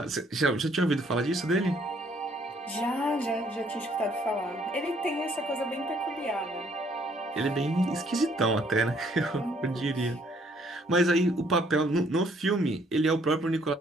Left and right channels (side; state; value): both; normal; correlation 0.65